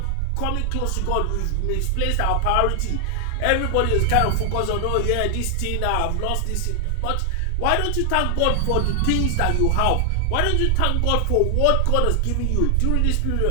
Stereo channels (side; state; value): both; different; correlation 0.00